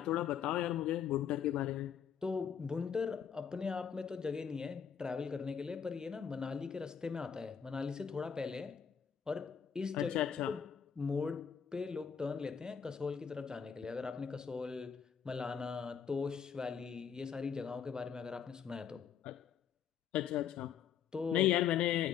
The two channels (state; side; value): quieter; right; 7.7 dB